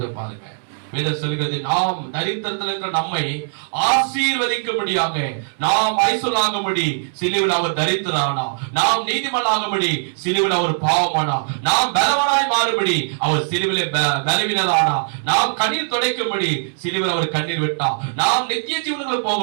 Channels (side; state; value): left; silent; 66 dB below the other